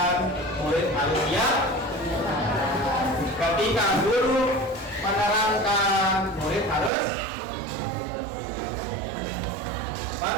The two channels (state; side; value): drops out; left; at 6.9 s